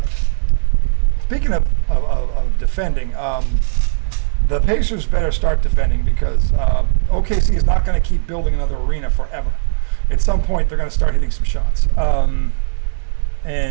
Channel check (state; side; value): silent; left; digital silence